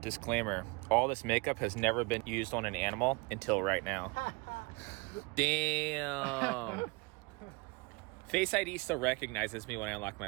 Disclaimer, all this makeup has never been used on an animal until right now. Damn. Face ID still recognizes me when I unlock my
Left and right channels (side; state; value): left; quieter; 27.6 dB